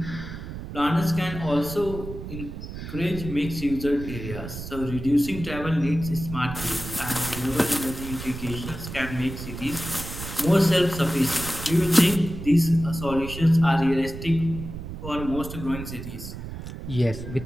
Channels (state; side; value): noise; right; rumble, 9 dB below the sound